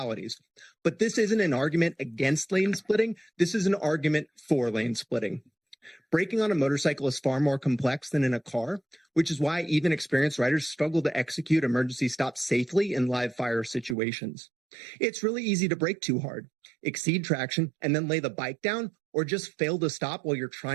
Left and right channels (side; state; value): left; drops out; at 14.0 s